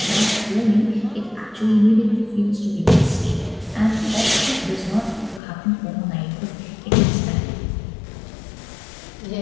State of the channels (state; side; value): drops out; right; at 5.4 s